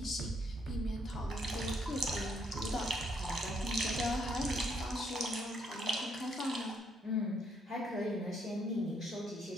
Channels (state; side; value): normal; both; correlation 0.72